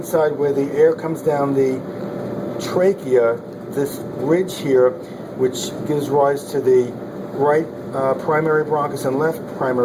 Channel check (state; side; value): identical; both; correlation 1.00